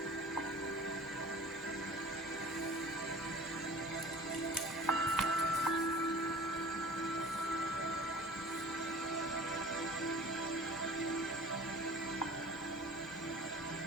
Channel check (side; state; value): both; normal; correlation 0.44